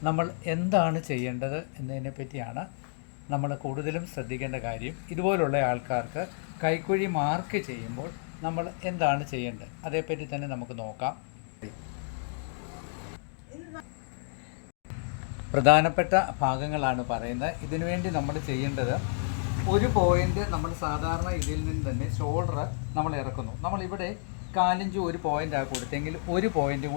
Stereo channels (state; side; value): silent; right; digital silence